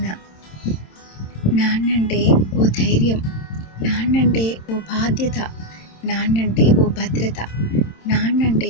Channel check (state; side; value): late; right; 27 ms